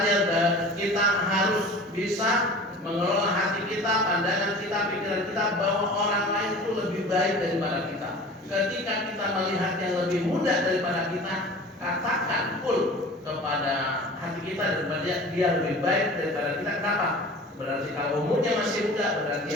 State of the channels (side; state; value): both; normal; correlation 0.41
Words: kita harus bisa mengelola hati kita, pandangan kita, pikiran kita bahwa orang lain itu lebih baik daripada kita. Ketika kita melihat yang lebih mudah daripada kita, katakan full kepada hati kita daripada dia lebih baik daripada kita. Kenapa? Berarti kalau umurnya masih muda, berarti